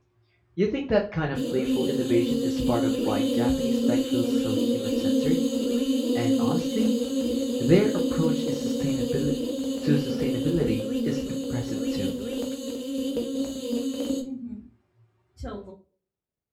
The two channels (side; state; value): both; identical; correlation 1.00